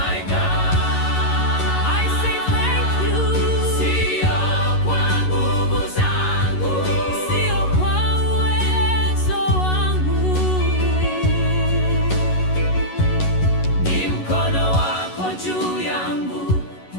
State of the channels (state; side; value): late; right; 11 ms